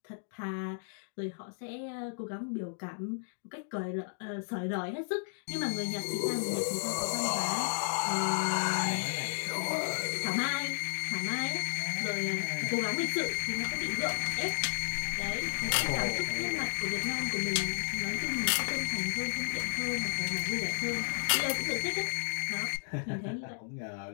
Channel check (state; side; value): silent; right; digital silence